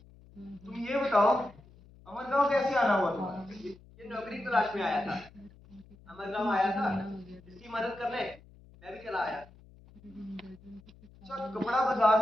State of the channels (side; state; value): left; noise; hum, 24 dB below the sound